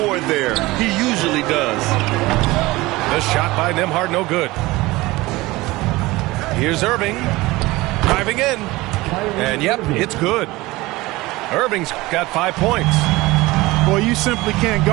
there. He usually does. The shot by Nembhard, no good. Here's Irving. Driving in. And, yep, it's good. Irving's got 5 points. Boy, you simply can't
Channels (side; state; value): left; quieter; 20.2 dB